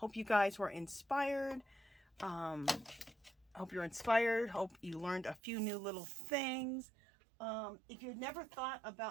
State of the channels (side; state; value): left; drops out; at 5.4 s